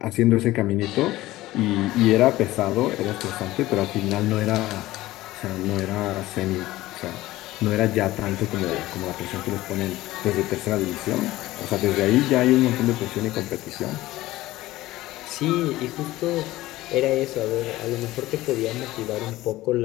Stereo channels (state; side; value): quieter; right; 17.0 dB